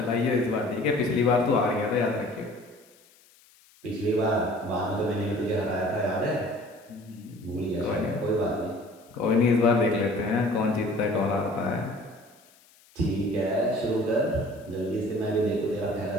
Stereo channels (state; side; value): noise; left; hiss, 29 dB below the sound